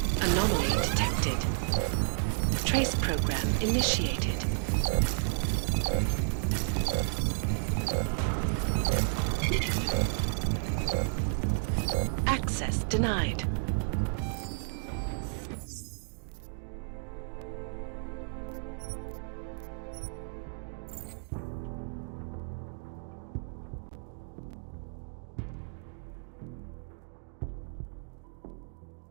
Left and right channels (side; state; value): left; silent; digital silence